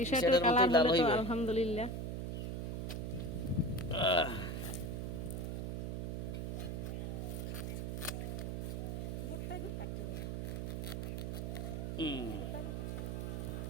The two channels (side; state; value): right; noise; hum, 2 dB below the sound